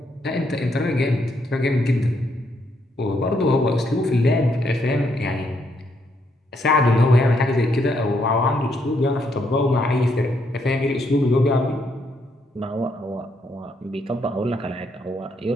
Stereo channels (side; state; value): both; normal; correlation 0.75